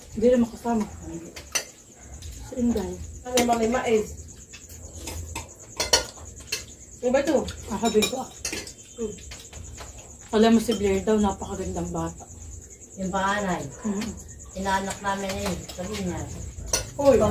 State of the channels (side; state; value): both; identical; correlation 1.00